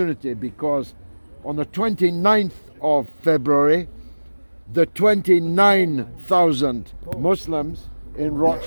because on the 29th of February, the 29,000 Muslims in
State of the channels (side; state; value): both; inverted; correlation -1.00